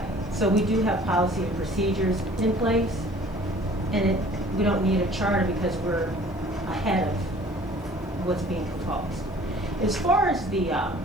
So we do have policy and procedures in place, and we don't need a charter because we're ahead of what's being proposed. As far as the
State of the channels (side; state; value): both; normal; correlation 0.50